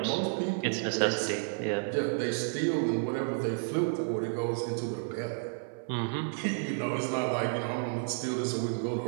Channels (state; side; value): silent; left; 57 dB below the other